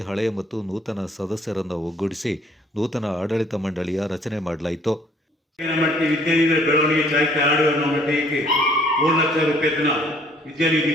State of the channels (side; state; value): both; normal; correlation 0.60